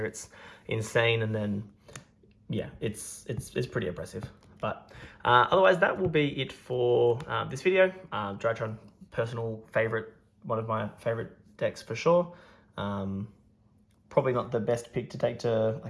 It's insane, and then yeah, it's pretty impressive. But otherwise, that will be it for this video. Drytron, personal favorite, one of my favorite decks for sure. Probably not the best pick to take to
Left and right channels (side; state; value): both; identical; correlation 1.00